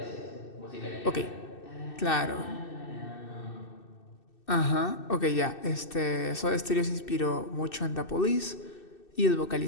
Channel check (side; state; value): right; late; 2.6 ms